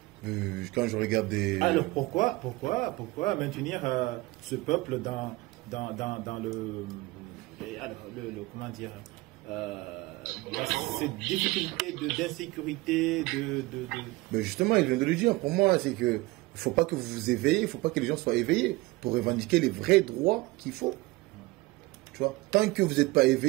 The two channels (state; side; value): quieter; left; 21.4 dB